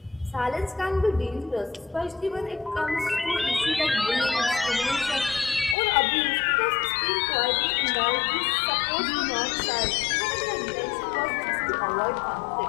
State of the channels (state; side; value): drops out; right; at 5.8 s